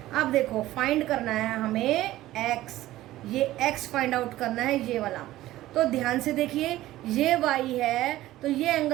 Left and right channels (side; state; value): left; quieter; 15.6 dB